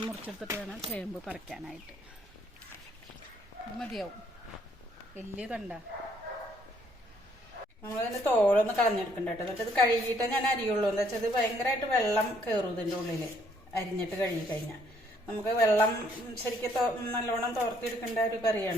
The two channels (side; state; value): both; normal; correlation 0.67